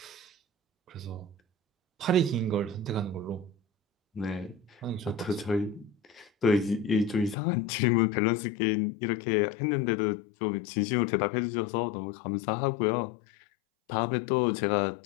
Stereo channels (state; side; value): drops out; right; at 7.4 s